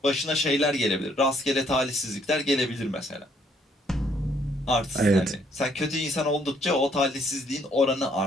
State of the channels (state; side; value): normal; both; correlation 0.67